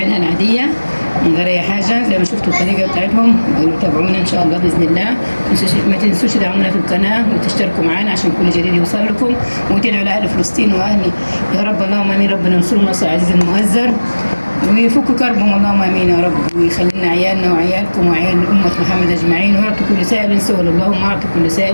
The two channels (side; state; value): both; inverted; correlation -1.00